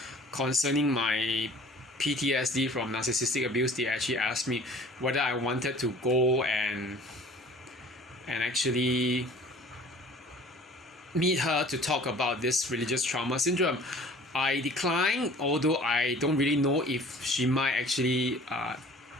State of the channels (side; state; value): both; normal; correlation 0.48